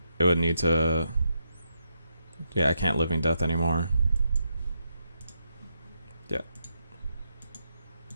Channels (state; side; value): inverted; both; correlation -0.81